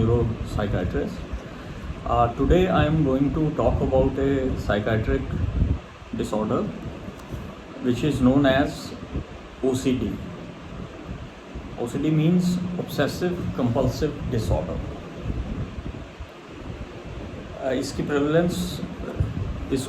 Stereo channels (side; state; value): both; identical; correlation 1.00